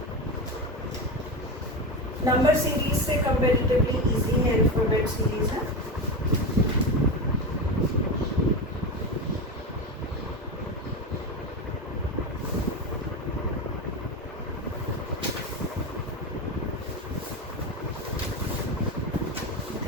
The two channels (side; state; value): both; normal; correlation 0.19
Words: नंबर सीरीज से कंपैरेटिवली इजी है, अल्फाबेट सीरीज है।